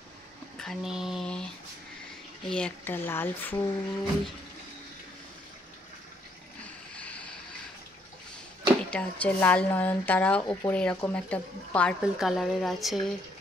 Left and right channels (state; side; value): normal; both; correlation 0.70